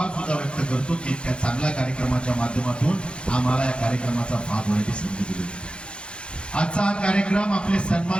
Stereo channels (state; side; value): late; right; 0.056 ms